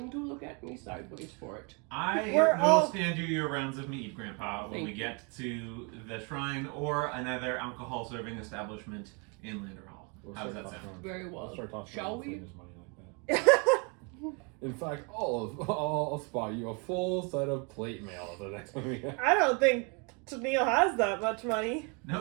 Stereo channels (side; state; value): left; quieter; 33.5 dB